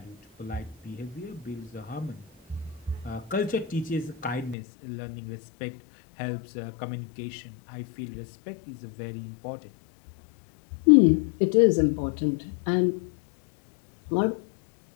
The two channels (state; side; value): drops out; right; at 4.5 s